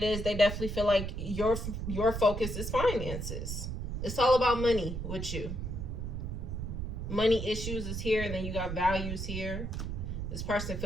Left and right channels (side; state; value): right; noise; rumble, 4 dB below the sound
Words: is, they definitely feel like your focus is finances. It's all about money with you. Money issues is here, and then you got values here. This person